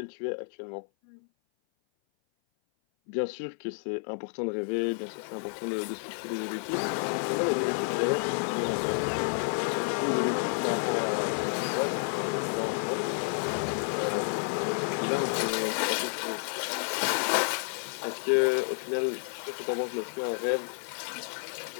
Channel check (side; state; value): right; silent; 56 dB below the other